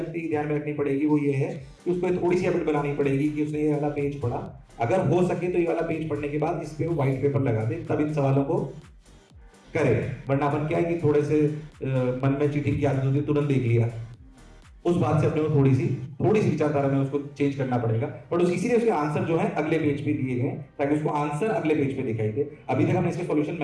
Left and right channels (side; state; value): both; identical; correlation 1.00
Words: है ध्यान में रखनी पड़ेगी वो ये है कि उसको थोड़ी सी हैबिट बनानी पड़ेगी कि उसने ये वाला पेज पढ़ा, अगर हो सके तो ये वाला पेज पढ़ने के बाद इस पे व्हाइट पेपर लगा दे, तब इन सवालों को करे। वरना अपन क्या है कि थोड़े से मन में चीटिंग की आदत होती है, तुरंत देख लिया, उस बात से अपने को थोड़ी सी विचारधारा में उसको चेंज करना पड़ेगा। बट इसीलिए उसके आंसर जो है अगले पेज पे दिए गए ताकि उसको आंसर अगले पेज पे दिखाई दे। अभी तक हमने इसके सॉल्यूशन